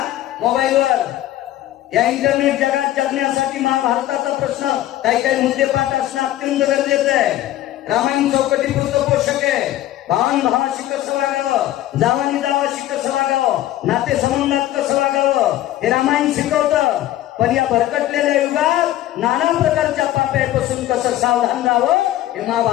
मोबाईलवर. या इंटरनेट जगात जगण्यासाठी महाभारताचा प्रश्न काही काही मुद्दे पाठ असणं अत्यंत गरजेचं आहे. रामायण चौकटी पुरतं पोषक आहे. भावन भावाशी कसं वागावं, जावानी जावाशी कसं वागावं, नाते संबंधात कसं वागावं, हे रामायण शिकवतं. पण या भरकटलेल्या युगात नाना प्रकारच्या पाप्यापासून कसं सावधान राहावं हे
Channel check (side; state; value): right; quieter; 14.1 dB